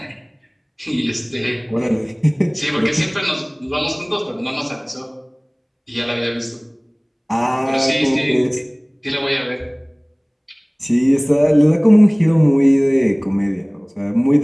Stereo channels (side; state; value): both; identical; correlation 1.00